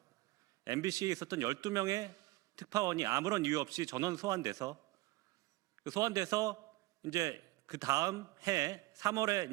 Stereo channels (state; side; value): quieter; left; 20.1 dB